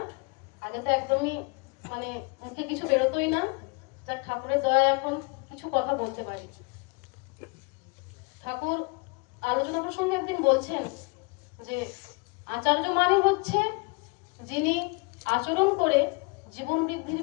আগে তো একদমই মানে মুখে কিছু বেরোতোই না। যার ঠাকুরের দয়া এখন কিছু কথা বলতে পারি। ঠাকুর আলোচনা প্রসঙ্গে একদিন বলছেন যে আচার্য মানে হচ্ছে যিনি আচরণ করে জীবন বৃদ্ধির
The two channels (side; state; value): right; quieter; 30.5 dB